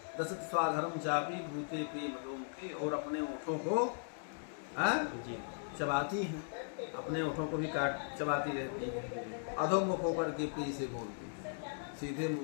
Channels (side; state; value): right; silent; digital silence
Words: दशत स्वाधर्म चापी भूते प्रिय मधोमुखी, और अपने ओठों को चबाती हैं, अपने ओठों को भी चबाती रहती है। अधोमुख होकर के प्रिय से बोलती है, सीधे